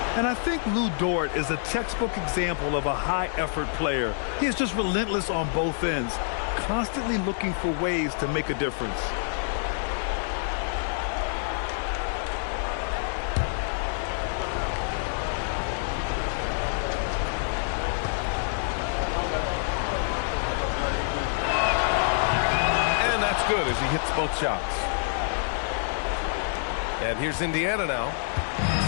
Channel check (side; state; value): right; silent; digital silence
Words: And I think Lou Dort is a textbook example of a high-effort player. He is just relentless on both ends, constantly looking for ways to make a difference. And that's good as he hits both shots. And here's Indiana now.